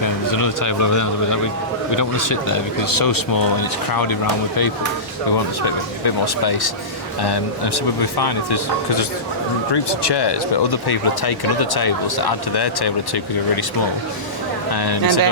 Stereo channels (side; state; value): both; normal; correlation -0.20